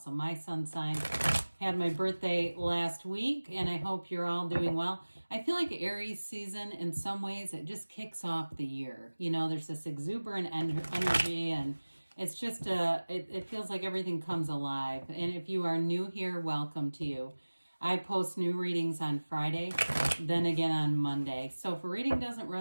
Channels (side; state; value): both; inverted; correlation -1.00